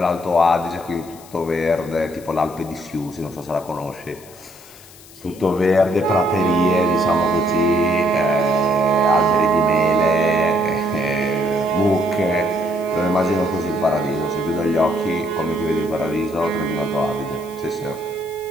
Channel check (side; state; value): left; noise; hiss, 21 dB below the sound